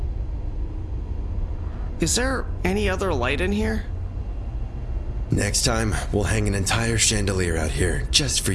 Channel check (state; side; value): identical; both; correlation 1.00